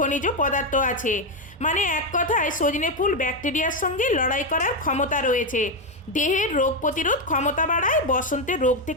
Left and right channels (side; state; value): both; normal; correlation 0.06